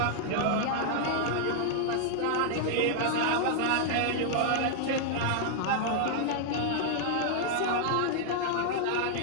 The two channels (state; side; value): different; both; correlation -0.01